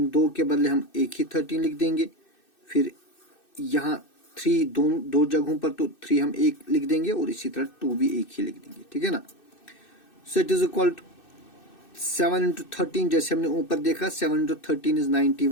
2 के बदले हम एक ही 13 लिख देंगे। फिर यहाँ 3 दो जगहों पर, तो 3 हम एक लिख देंगे और इसी तरह 2 भी एक ही लिख देंगे। ठीक है ना। So it is equal to 7 into 13, जैसे हमने ऊपर देखा 7 into 13 is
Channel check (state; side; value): late; right; 2.6 ms